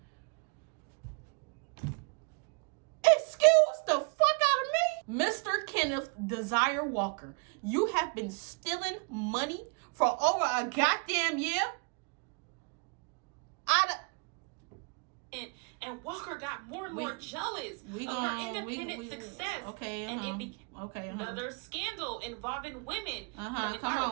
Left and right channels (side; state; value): left; quieter; 36.7 dB